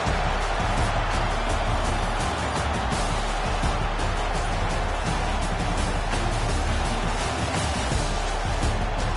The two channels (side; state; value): both; identical; correlation 1.00